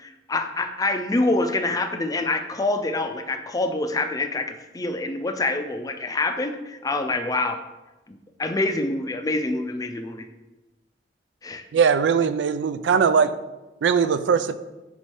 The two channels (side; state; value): both; normal; correlation 0.08